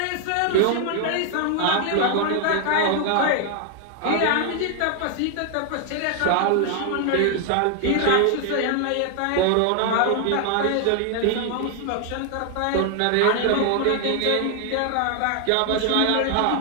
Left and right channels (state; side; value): different; both; correlation 0.00